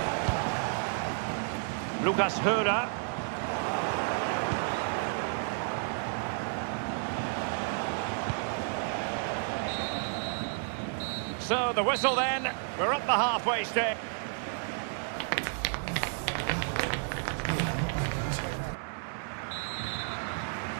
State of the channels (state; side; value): silent; left; 57 dB below the other